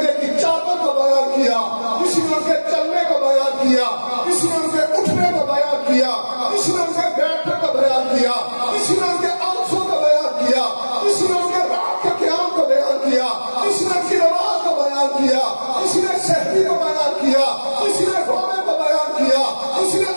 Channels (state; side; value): inverted; both; correlation -1.00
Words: کی چادر کو بیان کیا، کسی نے ان کے چلنے کو بیان کیا، کسی نے ان کے اٹھنے کو بیان کیا، کسی نے ان کے بیٹھنے کو بیان کیا، کسی نے ان کے آنسوں کو بیان کیا، کسی نے ان کے رات کے قیام کو بیان کیا، کسی نے ان کی نماز کو بیان کیا، کسی نے شہری کو بیان کیا، کسی نے رونے کو بیان کیا، کسی نے